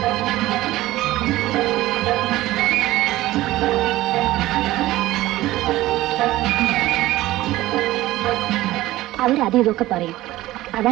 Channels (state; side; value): quieter; left; 16.7 dB